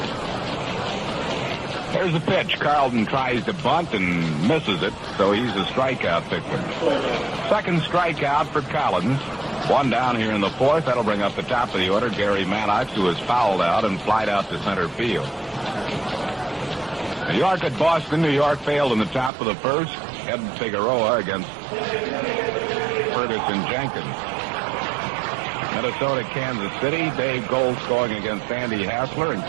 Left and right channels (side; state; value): left; drops out; at 19.3 s